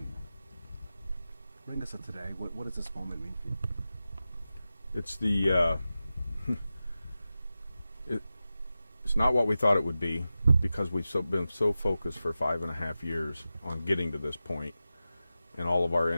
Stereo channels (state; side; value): inverted; both; correlation -0.93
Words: Bring us to today. What does this moment mean for you? It's it's not what we thought it would be, because we've been so focused for 5.5 years on getting to this point, and all of our